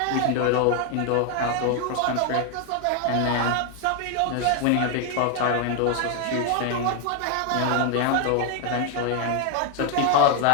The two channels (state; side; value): different; both; correlation 0.01